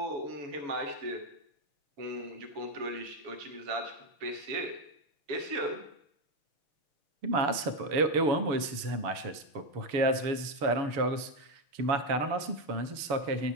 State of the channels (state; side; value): late; left; 7.1 ms